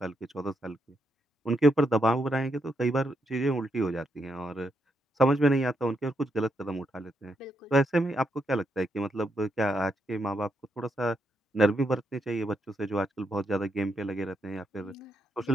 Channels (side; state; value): both; normal; correlation 0.80